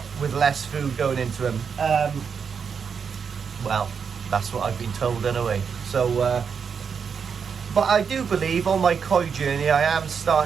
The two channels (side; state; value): left; quieter; 6.4 dB